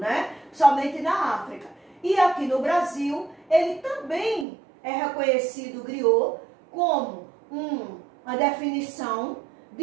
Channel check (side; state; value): left; drops out; at 4.5 s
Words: somente na África. E aqui no Brasil, ele também é reconhecido, o griot, como uma definição